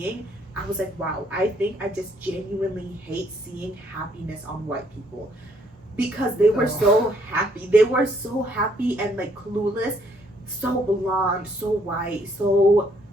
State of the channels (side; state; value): both; normal; correlation 0.68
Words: I was like, wow, I think I just genuinely hate seeing happiness on white people, because they were so happy. They were so happy and like clueless, so blonde, so white, so